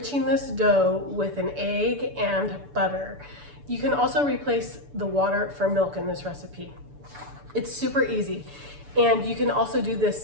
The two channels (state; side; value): late; left; 6.9 ms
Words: this dough with an egg and butter. You can also replace the water for milk in this recipe. It's super easy. And you can also do